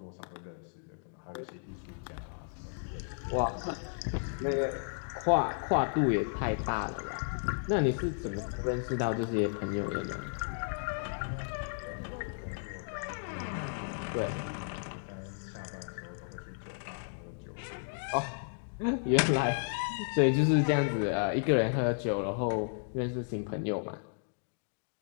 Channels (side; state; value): right; silent; digital silence